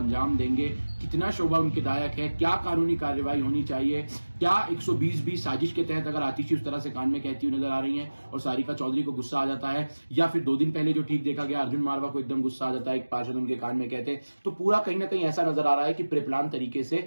देंगे? कितना शोभा उनके दायक है? क्या कानूनी कार्रवाई होनी चाहिए? क्या 120 साजिश के तहत अगर आतिशी उस तरह से कान में कहती हुई नजर आ रही हैं और सारिका चौधरी को गुस्सा आ जाता है, या फिर 2 दिन पहले जो ठीक देखा गया अर्जुन मारवा को एकदम गुस्सा आ जाता है, एक पार्षद उनके कान में कहते, तो पूरा कहीं ना कहीं ऐसा नजर आ रहा है कि प्रेप्लान तरीके से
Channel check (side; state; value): both; inverted; correlation -1.00